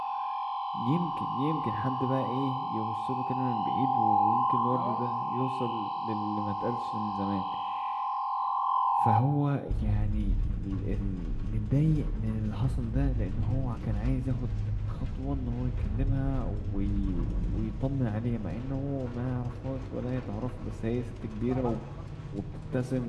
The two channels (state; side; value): identical; both; correlation 1.00